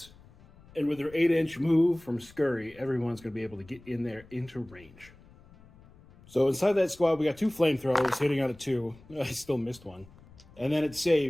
And with their 8-inch move from Scurry, everyone's going to be able to get in there into range. So inside that squad, we got 2 flamethrowers hitting on a 2. I still missed one. And then it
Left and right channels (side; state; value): left; noise; rumble, 24 dB below the sound